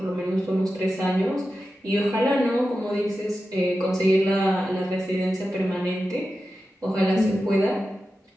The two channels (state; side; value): normal; both; correlation 0.92